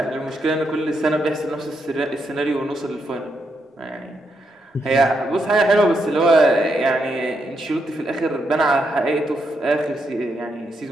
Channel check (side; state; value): both; normal; correlation 0.80